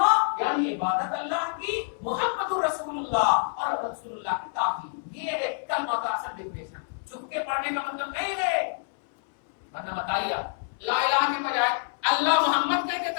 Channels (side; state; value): right; silent; 60 dB below the other